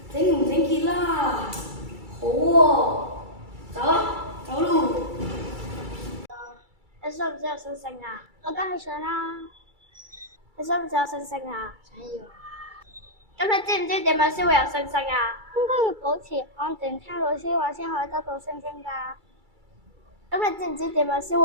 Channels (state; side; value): late; left; 2.3 ms